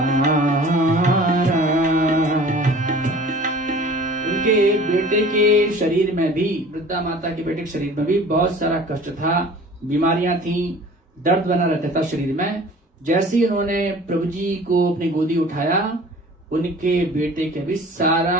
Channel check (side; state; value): both; normal; correlation 0.45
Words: उनके बेटे के शरीर में भी, वृद्धा माता के बेटे के शरीर में भी बहुत सारा कष्ट था, बीमारियां थी, दर्द बना रहता था शरीर में। जैसे ही उन्होंने प्रभु जी को अपनी गोदी उठाया, उनके बेटे के भी